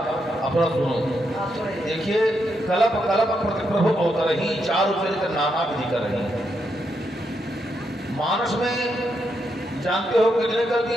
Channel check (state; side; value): normal; both; correlation 0.81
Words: अपना सुनो। देखिए कलप कलप प्रतिप्रभु अवतरही चारु चरित्र नाना विधि कर रही। मानस में जानते हो कितने कल्प की